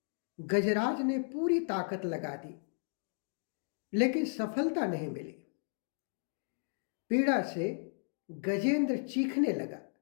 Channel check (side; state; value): right; silent; digital silence